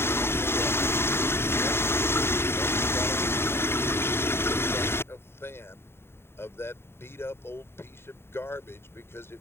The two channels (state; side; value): late; right; 0.12 ms